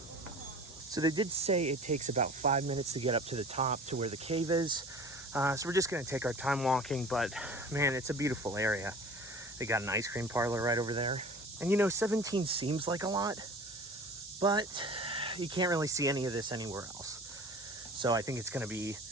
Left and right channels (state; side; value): normal; both; correlation 0.42